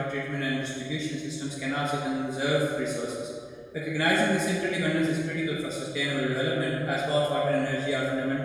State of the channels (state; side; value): identical; both; correlation 1.00